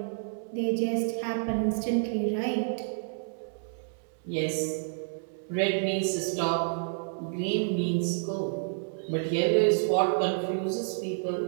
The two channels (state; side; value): silent; left; digital silence